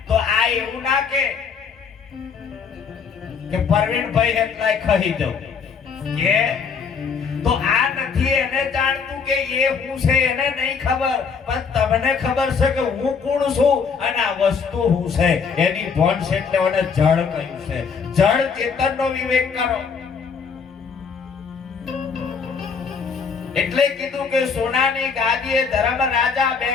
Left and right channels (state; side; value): quieter; right; 5.8 dB